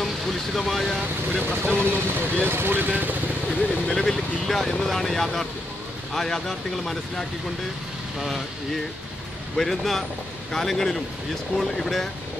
കുലുഷിതമായ ഒരു പ്രശ്നമൊന്നും ഈ സ്കൂളിന് നിലവിൽ ഇല്ല എന്നതാണ് യാഥാർത്ഥ്യം. ആ യാഥാർത്ഥ്യങ്ങൾ മനസ്സിലാക്കിക്കൊണ്ട് ഈ വരുന്ന കാലങ്ങളിലും ഈ സ്കൂൾ ഇവിടെ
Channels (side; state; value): both; normal; correlation 0.81